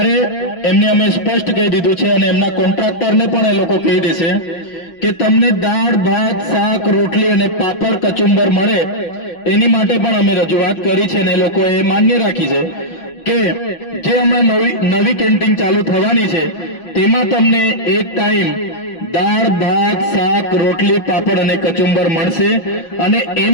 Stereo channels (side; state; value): right; late; 6.0 ms